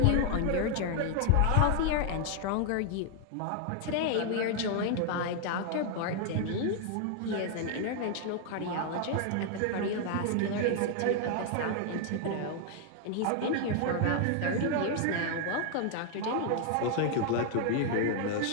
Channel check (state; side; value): different; both; correlation 0.00